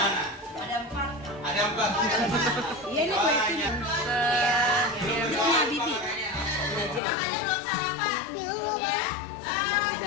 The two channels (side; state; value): right; drops out; at 7.0 s